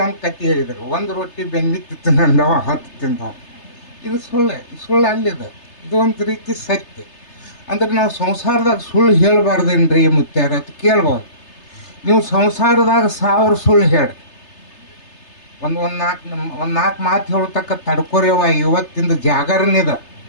ಕತ್ತಿ ಹೇಳಿದರು, 1 ರೊಟ್ಟಿ ಬೆನ್ನಿತ್ತು ತಿಂದವ 10 ತಿಂದವ. ಇದು ಸುಳ್ಳು ಅಲ್ಲಿದೆ. ಇದು ಒಂದು ರೀತಿ ಸತ್ಯ. ಅಂದ್ರೆ ನಾವು ಸಂಸಾರದಾಗ ಸುಳ್ಳು ಹೇಳಬಾರ್ದೇನ್ರಿ ಮುತ್ಯಾರ ಅಂತ ಕೇಳ್ಬೋದು. ನೀವು ಸಂಸಾರದಾಗ 1000 ಸುಳ್ಳು ಹೇಳಿ ಒಂದು 4 ಮಾತು ಹೇಳತಕ್ಕ ತಡ್ಕೊರೇವ. ಇವತ್ತಿಂದ ಜಾಗರಣೆದ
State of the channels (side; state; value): right; late; 3.3 ms